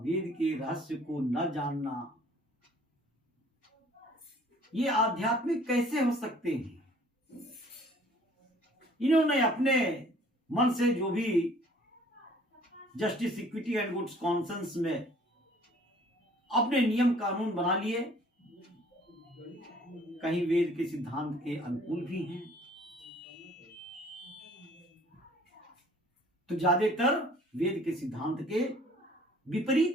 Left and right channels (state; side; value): normal; both; correlation 0.55